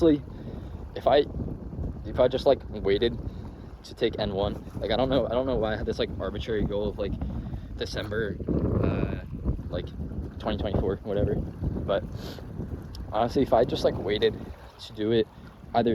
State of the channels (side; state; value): both; identical; correlation 1.00